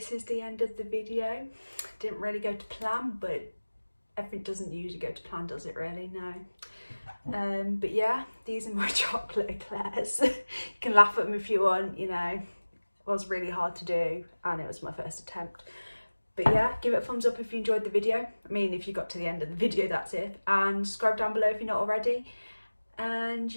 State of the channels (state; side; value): inverted; both; correlation -1.00